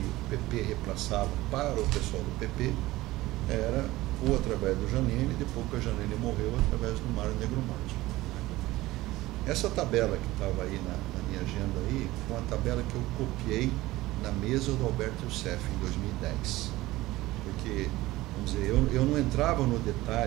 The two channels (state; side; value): quieter; left; 18.1 dB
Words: PP repassava para o pessoal do PP era ou através do Janine, depois que a Janine morreu, através do Mário Negromonte. Essa tabela que estava aí na minha agenda aí, foi uma tabela que eu copiei na mesa do Alberto Youssef em 2010. Porque, vamos dizer, eu não entrava no